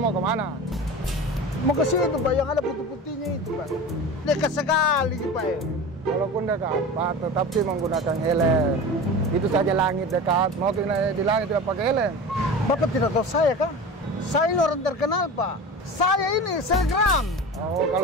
mau kemana? Mau ke situ Pak, yang ada putih-putihnya itu Pak. Dekat sekali Pak ya. Walaupun dekat Pak, tetapi menggunakan helm. Itu saja langit dekat. Mau di langit tidak pakai helm. Bapak tidak tahu saya kan? Saya ini orang terkenal Pak. Saya ini selebgram. Oh,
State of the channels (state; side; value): normal; both; correlation 0.32